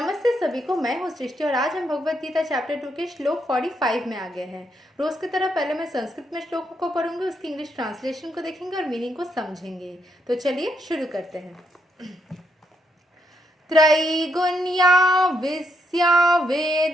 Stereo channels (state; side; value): normal; both; correlation 0.77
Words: सभी को। मैं हूँ सृष्टि और आज हम भगवत गीता चैप्टर 2 के श्लोक 45 में आ गए हैं। रोज की तरह पहले मैं संस्कृत में श्लोक को पढ़ूंगी, उसकी इंग्लिश ट्रांसलेशन को देखेंगे और मीनिंग को समझेंगे। तो चलिए शुरू करते हैं। त्रैगुण्या विस्या